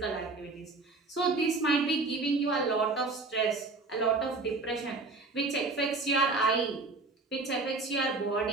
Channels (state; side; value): quieter; left; 3.6 dB